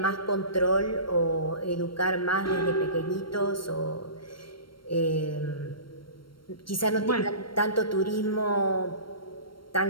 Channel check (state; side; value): late; right; 0.73 ms